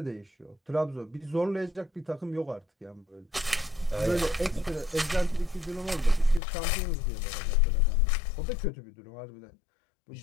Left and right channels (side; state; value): right; drops out; at 6.4 s